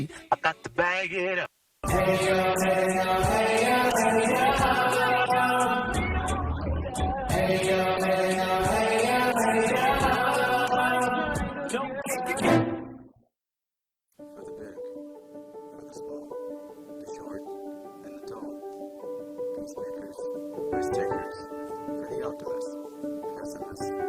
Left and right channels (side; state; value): both; identical; correlation 1.00